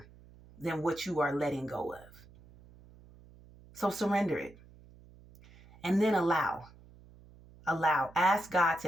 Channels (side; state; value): right; noise; hum, 23 dB below the sound